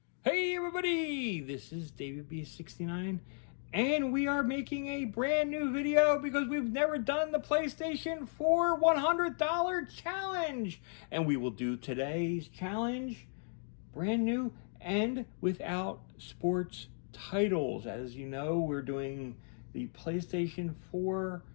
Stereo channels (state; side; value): silent; right; 54 dB below the other